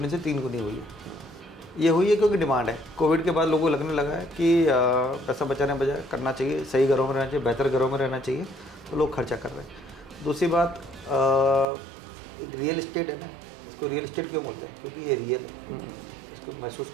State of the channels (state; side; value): drops out; left; at 11.7 s